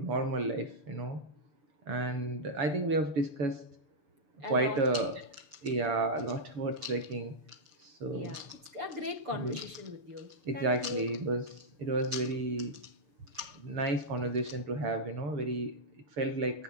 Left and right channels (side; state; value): left; late; 6.8 ms